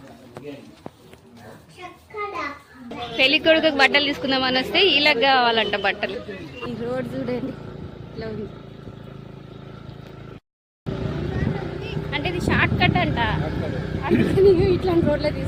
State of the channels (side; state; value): both; identical; correlation 1.00